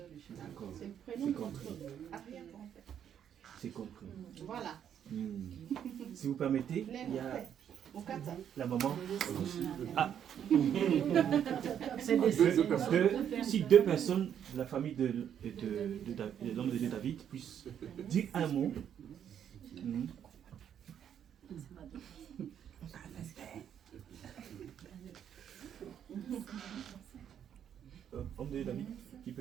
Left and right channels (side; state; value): left; quieter; 9.1 dB